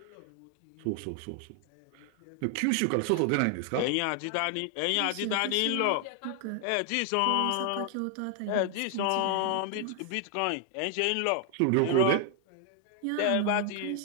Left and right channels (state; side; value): different; both; correlation 0.00